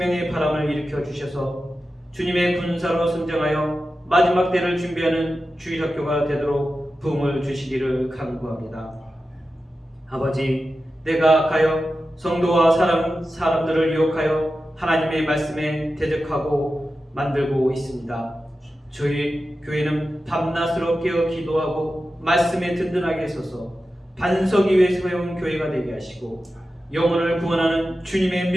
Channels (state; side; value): normal; both; correlation 0.92